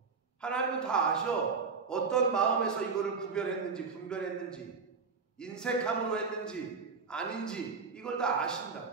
하나님은 다 아셔. 어떤 마음에서 이거를 구별했는지, 분별했는지, 인색함으로 했는지 아닌지 이걸 다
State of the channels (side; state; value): left; quieter; 5.0 dB